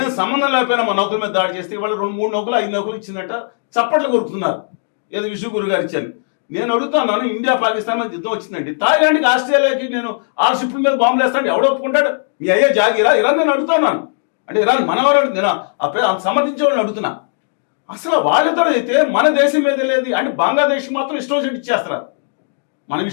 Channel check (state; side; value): silent; right; digital silence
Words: సంబంధం లేకపోయినా మన నౌకల మీద దాడి చేస్తే ఇవాళ 2-3 నౌకలు 5 నౌకలు ఇచ్చిందట, చప్పట్లు కొరుకుతున్నారు. ఏదో విశ్వగురు గారు ఇచ్చాను. నేను అడుగుతున్నాను, ఇండియా పాకిస్తాన్ మీద యుద్ధం వచ్చిందండి, థాయిలాండ్కి ఆస్ట్రేలియాకి నేను 6 షిప్ల మీద బాంబులు వేస్తాను, ఎవడో ఒప్పుకుంటాడు? మీ అయ్యే జాగిరా ఇరాన్? నేను అడుగుతున్నాను. అంటే ఇరాన్ మనవారు నేను సమర్థించే వాళ్ళని అడుగుతున్నా. అసలు వాళ్ళిద్దరూ అయితే మన దేశం మీద లేదు అంటే బంగ్లాదేశ్ మాత్రం ఇష్టం వచ్చినట్టు ఇచ్చేస్తారు. మన